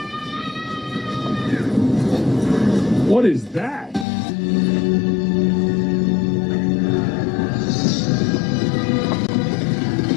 What is that?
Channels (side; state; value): right; drops out; at 4.0 s